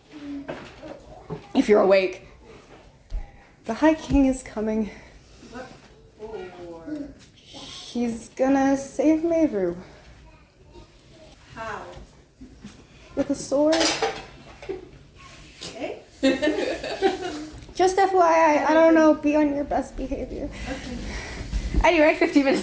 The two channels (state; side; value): identical; both; correlation 1.00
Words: If you're awake. The High King is coming. He's gonna save Mehru. How? With a sword. Okay. Just FYI, I don't know, be on your best behavior. Anyway, 15